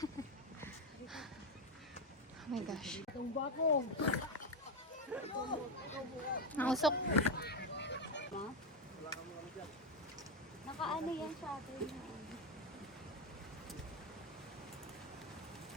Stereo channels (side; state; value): both; normal; correlation 0.08